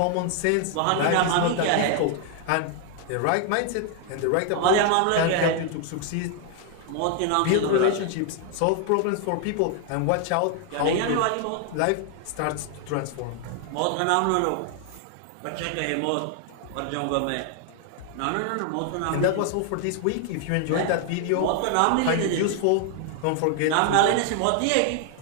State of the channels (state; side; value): different; both; correlation 0.00